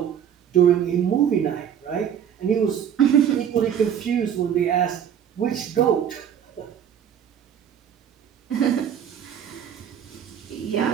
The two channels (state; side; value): quieter; left; 9.0 dB